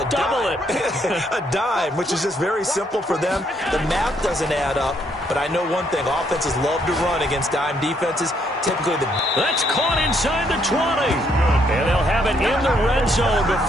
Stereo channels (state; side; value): normal; both; correlation 0.72